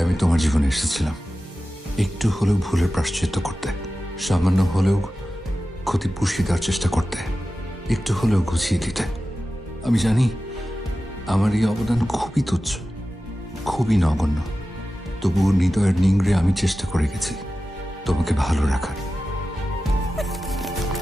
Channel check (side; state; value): both; normal; correlation 0.94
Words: আমি তোমার জীবনে এসেছিলাম একটু হলেও ভুলের প্রায়শ্চিত্ত করতে, সামান্য হলেও ক্ষতি পুষিয়ে দেওয়ার চেষ্টা করতে, একটু হলেও গুছিয়ে দিতে। আমি জানি আমার এই অবদান খুবই তুচ্ছ, খুবই নগণ্য, তবুও হৃদয়ের নিংড়ে আমি চেষ্টা করে গেছি তোমাকে ভালো রাখার।